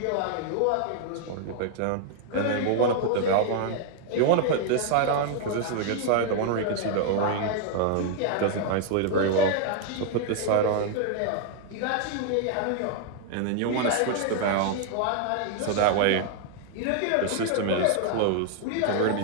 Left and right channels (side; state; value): both; different; correlation 0.00